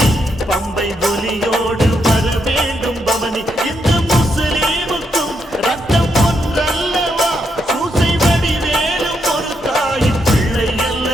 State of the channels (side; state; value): both; normal; correlation 0.79